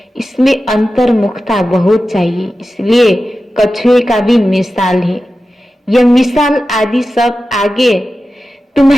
इसमें अंतर्मुखता बहुत चाहिए, इसलिए कछुए का भी मिसाल है। यह मिसाल आदि सब आगे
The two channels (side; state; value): both; normal; correlation 0.93